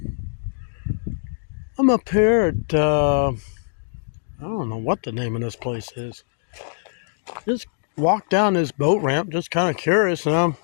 I'm up here at, I don't know what the name of this place is. Just walked down this boat ramp, just kind of curious. And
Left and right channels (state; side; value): silent; right; digital silence